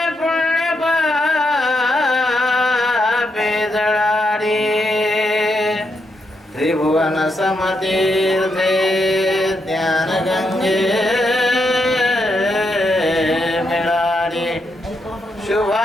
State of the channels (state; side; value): normal; both; correlation 0.81